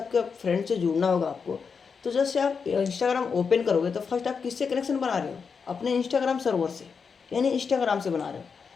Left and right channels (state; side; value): quieter; right; 5.7 dB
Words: फ्रेंड से जुड़ना होगा आपको, तो जैसे आप इंस्टाग्राम ओपन करोगे तो फर्स्ट आप किससे कनेक्शन बना रहे हो, अपने इंस्टाग्राम सर्वर से, यानी इंस्टाग्राम से बना रहे हो।